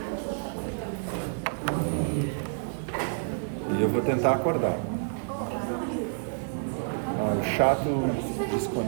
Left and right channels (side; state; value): left; silent; digital silence